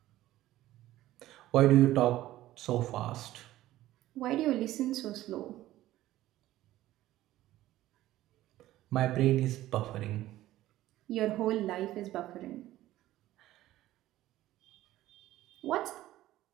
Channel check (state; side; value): quieter; left; 15.1 dB